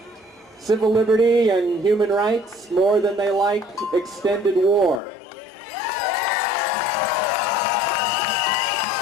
civil liberty and human rights more than they like extended war.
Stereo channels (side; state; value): right; drops out; at 5.0 s